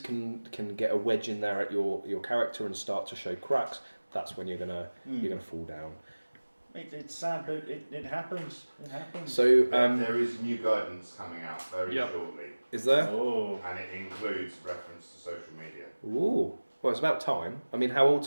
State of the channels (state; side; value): inverted; both; correlation -1.00